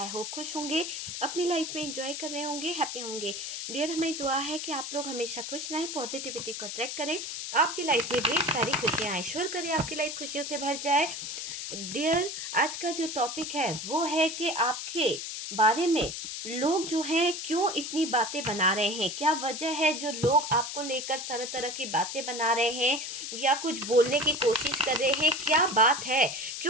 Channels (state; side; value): noise; left; hiss, 6 dB below the sound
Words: होप खुश होंगे, अपनी लाइफ में एंजॉय कर रहे होंगे, हैप्पी होंगे। डियर, हमें दुआ है कि आप लोग हमेशा खुश रहें, पॉजिटिविटी को अट्रैक्ट करें, आपकी लाइफ में ढेर सारी खुशियाँ आए, श्योर करें आपकी लाइफ खुशियों से भर जाए। डियर, आज का जो टॉपिक है वो है कि आपके बारे में लोग जो हैं क्यों इतनी बातें बना रहे हैं, क्या वजह है जो लोग आपको लेकर तरह तरह की बातें बना रहे हैं या कुछ बोलने की कोशिश कर रहे हैं। क्या बात है,